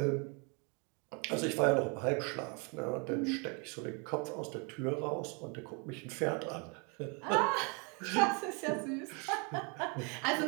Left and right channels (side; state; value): left; quieter; 33.9 dB